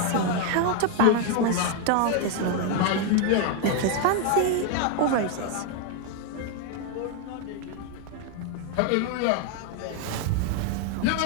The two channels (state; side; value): different; both; correlation 0.01